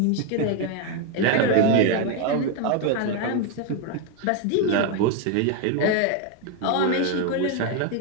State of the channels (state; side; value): different; both; correlation 0.01